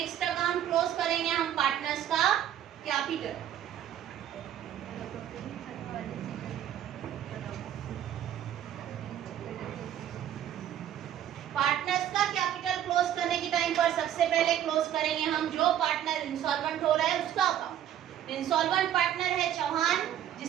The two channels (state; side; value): quieter; left; 10.8 dB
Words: अकाउंट क्लोज करेंगे हम पार्टनर्स का कैपिटल। पार्टनर्स का कैपिटल क्लोज करने के टाइम पर सबसे पहले क्लोज करेंगे हम जो पार्टनर इंसॉल्वेंट हो रहा है उसका अकाउंट। इंसॉल्वेंट पार्टनर है चौहान,